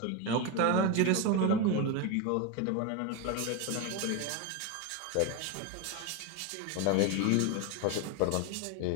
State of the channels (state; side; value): different; both; correlation 0.02